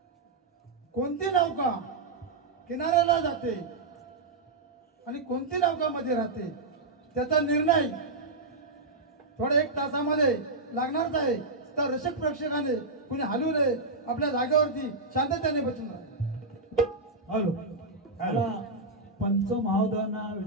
कोणती नौका किनाऱ्याला जाते आणि कोणती नौका मध्ये राहते त्याचा निर्णय थोड्या 1 तासामध्ये लागणारच आहे. तर रसिक प्रेक्षकाने कुणी हलवू नये, आपल्या जागेवरती शांततेने बसून राहा. हॅलो. मला पंच महोदयांना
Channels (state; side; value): quieter; left; 3.4 dB